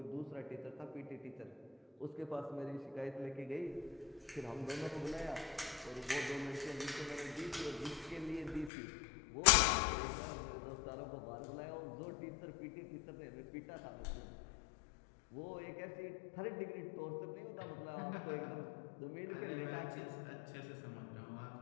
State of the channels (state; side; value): drops out; right; at 8.7 s